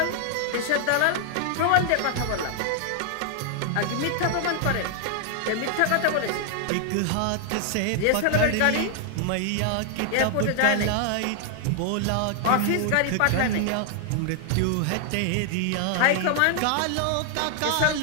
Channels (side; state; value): both; different; correlation 0.00